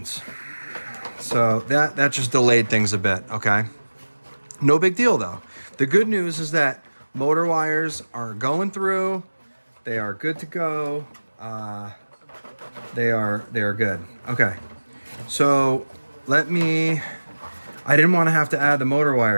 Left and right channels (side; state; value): both; inverted; correlation -1.00